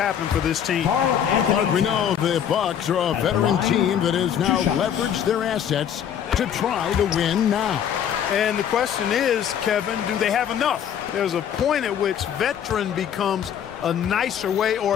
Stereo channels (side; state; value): right; quieter; 9.1 dB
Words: for this team. But we know the Bucks are a veteran team that has now leveraged their assets to try to win now. And the question is, Kevin, do they have enough? There's a point at which veteran becomes a nicer way